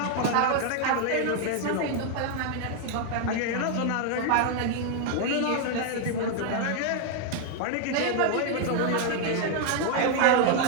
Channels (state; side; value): different; both; correlation 0.00